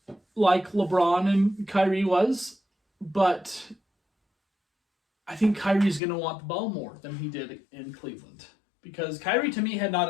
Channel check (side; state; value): right; drops out; at 6.0 s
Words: like LeBron and Kyrie was, but I think Kyrie's going to want the ball more than he did in Cleveland. Because Kyrie, to me, had